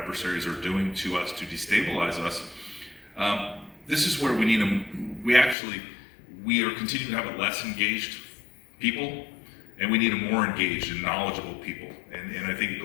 are doing to us to destabilize us. This is where we need them. We are continuing to have a less engaged people, and we need a more engaged and knowledgeable people. And I think it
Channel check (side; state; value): right; drops out; at 5.6 s